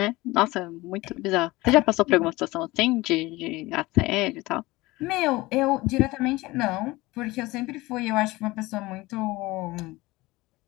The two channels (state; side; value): quieter; right; 20.5 dB